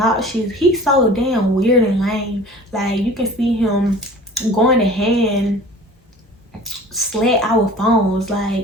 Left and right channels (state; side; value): normal; both; correlation 0.44